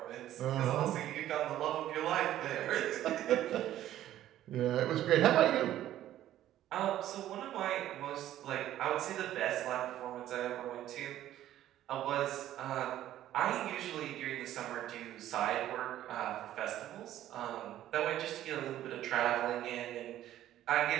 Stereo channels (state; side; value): quieter; left; 12.8 dB